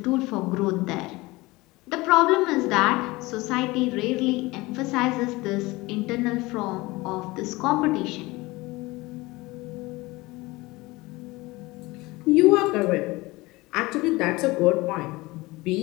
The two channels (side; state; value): right; quieter; 21.5 dB